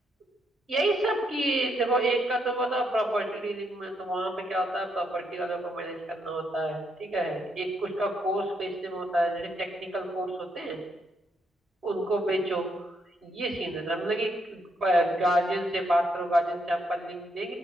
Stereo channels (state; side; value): normal; both; correlation 0.76